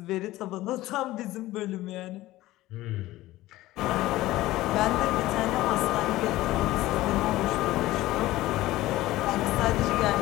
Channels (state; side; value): quieter; right; 16.8 dB